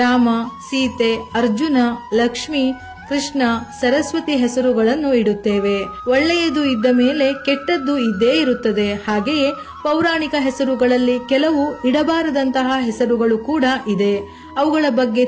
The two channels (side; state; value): both; identical; correlation 1.00